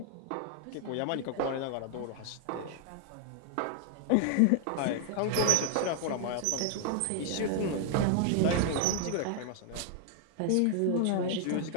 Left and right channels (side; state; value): both; different; correlation 0.00